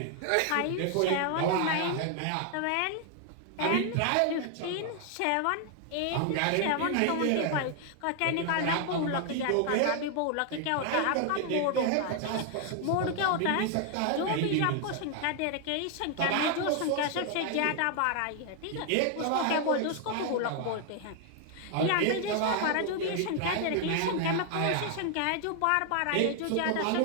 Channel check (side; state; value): both; different; correlation 0.00